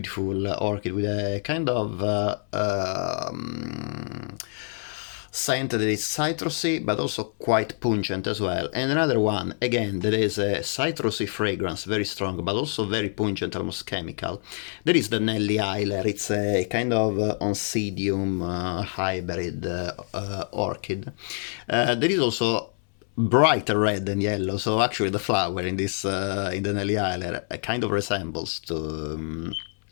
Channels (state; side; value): silent; right; 61 dB below the other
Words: orchid with a kind of scent that is citrusy but also quite pungent as well, and another one again that is a citrusy fragrance, very strong but also very pungent, almost chemical. There is the Nelly Eiler. It's a kind of oncidium hybrid orchid. There is also brighter red than yellow, so actually the flower in this in the Nelly Eiler kind of resembles to